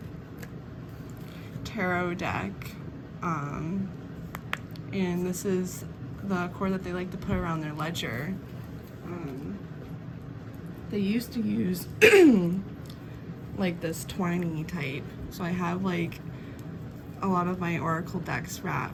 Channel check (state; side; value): identical; both; correlation 1.00